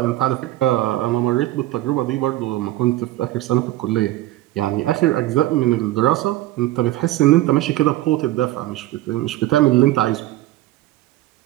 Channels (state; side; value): quieter; left; 15.6 dB